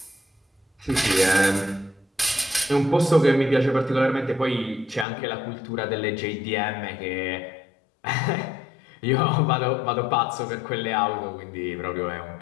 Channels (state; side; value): drops out; right; at 5.1 s